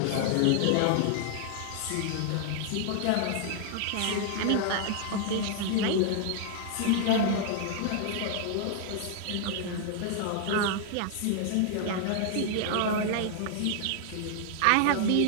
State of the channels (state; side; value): different; both; correlation 0.00